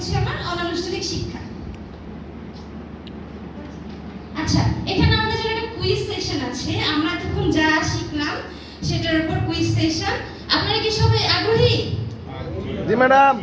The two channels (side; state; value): both; identical; correlation 1.00